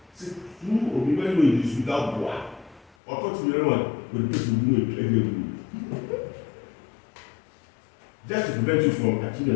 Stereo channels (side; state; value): right; drops out; at 2.9 s